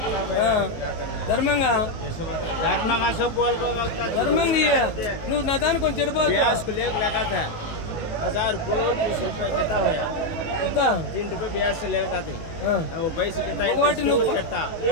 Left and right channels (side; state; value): right; late; 18 ms